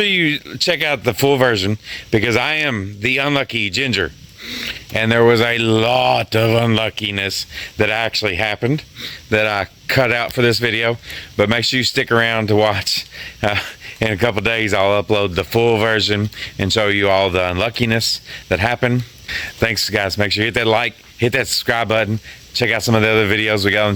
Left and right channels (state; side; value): identical; both; correlation 1.00